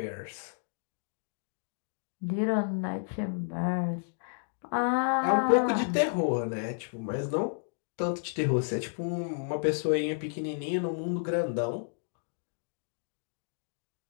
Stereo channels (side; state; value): right; silent; digital silence